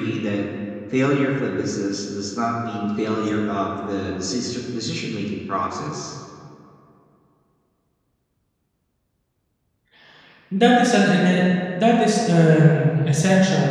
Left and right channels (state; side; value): identical; both; correlation 1.00